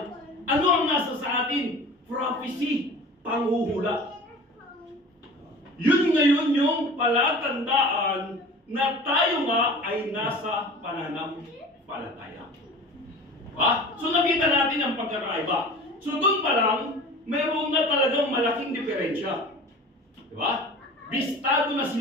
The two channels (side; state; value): both; normal; correlation 0.39